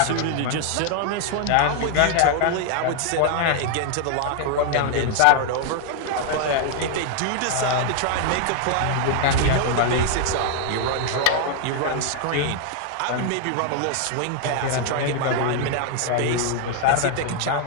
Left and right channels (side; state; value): both; different; correlation 0.00